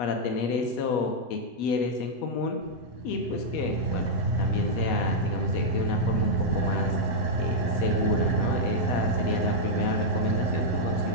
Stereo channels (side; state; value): right; late; 8.3 ms